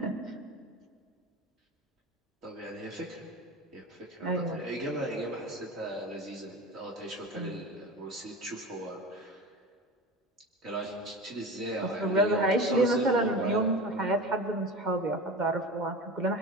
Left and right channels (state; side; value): normal; both; correlation 0.31